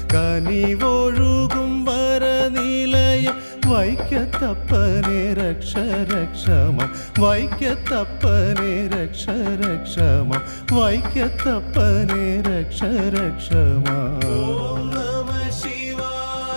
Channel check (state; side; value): inverted; both; correlation -1.00